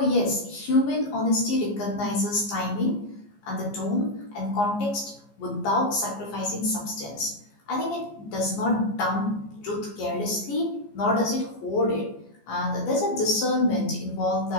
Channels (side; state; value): right; late; 14 ms